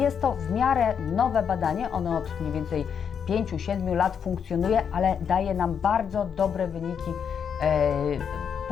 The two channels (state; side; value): quieter; right; 7.3 dB